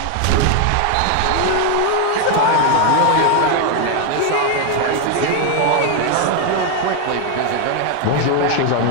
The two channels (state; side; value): different; both; correlation 0.01